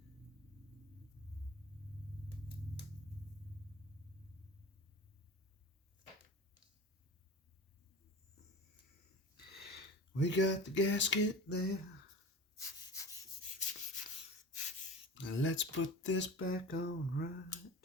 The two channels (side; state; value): both; normal; correlation 0.35